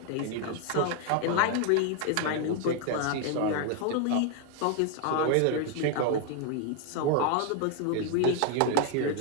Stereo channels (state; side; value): different; both; correlation 0.00